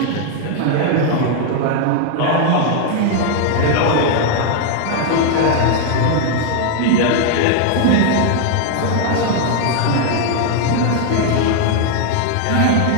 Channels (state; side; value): different; both; correlation 0.00